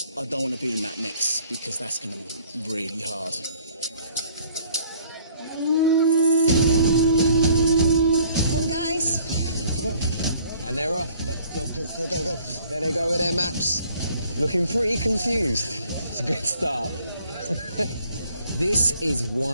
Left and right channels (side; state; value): both; inverted; correlation -0.58